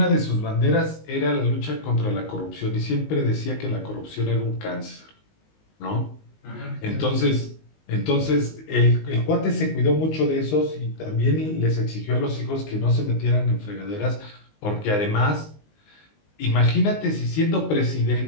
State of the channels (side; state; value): right; late; 19 ms